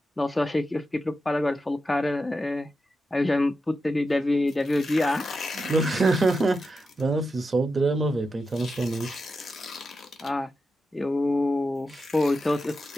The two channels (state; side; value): normal; both; correlation 0.89